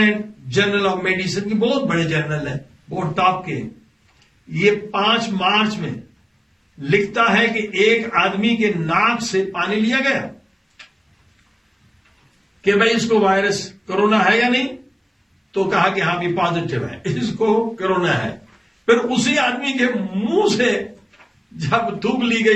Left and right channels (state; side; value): identical; both; correlation 1.00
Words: journal of medicine کی بہت بڑے جرنل ہے، بہت ٹاپ کے، یہ 5 مارچ میں لکھتا ہے کہ ایک آدمی کے ناک سے پانی لیا گیا کہ بھائی اس کو وائرس کرونا ہے یا نہیں، تو کہا کہ ہاں بھی پازیٹو ہے، اس کو کرونا ہے. پھر اسی آدمی کے منہ سے جب تھوک لی